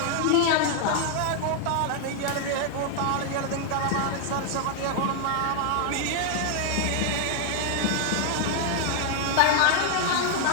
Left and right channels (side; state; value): both; different; correlation 0.00